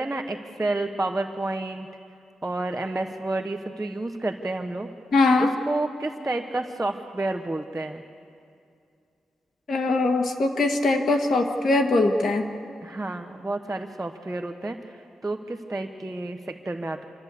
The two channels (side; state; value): both; normal; correlation 0.83